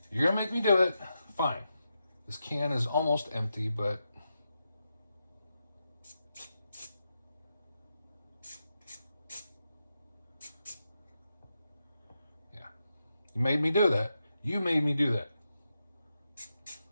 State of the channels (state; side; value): inverted; both; correlation -0.86